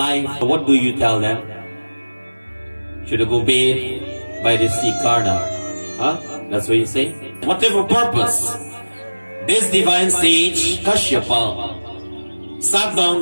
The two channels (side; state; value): both; inverted; correlation -1.00